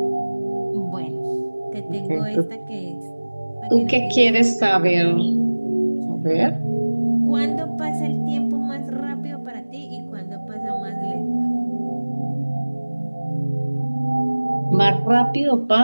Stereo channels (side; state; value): both; inverted; correlation -1.00